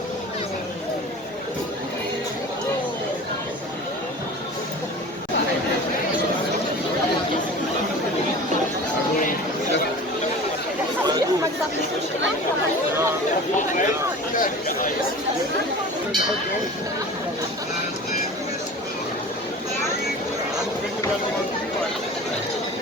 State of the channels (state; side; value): normal; both; correlation 0.38